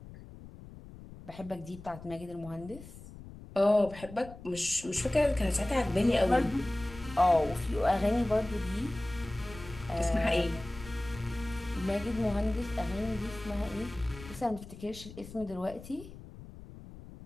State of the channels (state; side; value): noise; left; rumble, 16 dB below the sound